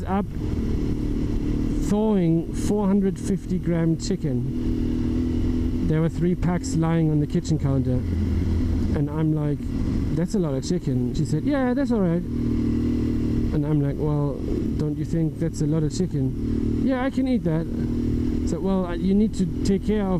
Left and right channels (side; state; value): both; identical; correlation 1.00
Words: up thawing 450 gram chicken. There were 3 packs lying on the kitchen counter. And I'm like, that's a lot of chicken. She said, yeah, that's all right. And I'm like, well, don't you think that's a lot of chicken? Yeah, I can eat that. So, well, you need to take care